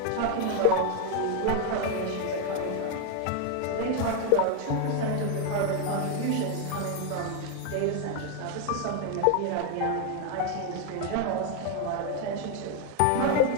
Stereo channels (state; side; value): different; both; correlation 0.01